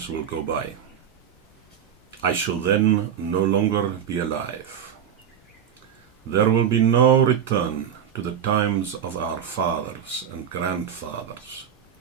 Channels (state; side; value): quieter; left; 8.6 dB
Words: will go by. I shall then no longer be alive. There will be no return to the times of our fathers and grandfathers.